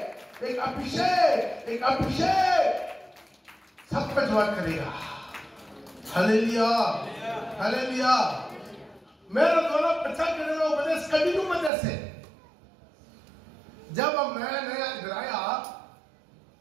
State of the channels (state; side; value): drops out; left; at 11.7 s